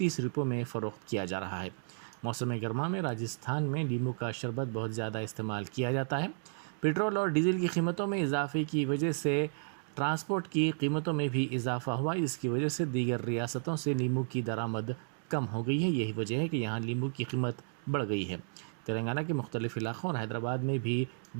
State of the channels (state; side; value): silent; left; digital silence